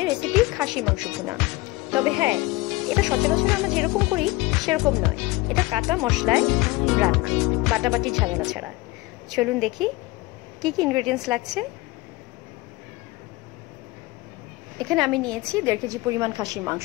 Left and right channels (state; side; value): quieter; right; 21.1 dB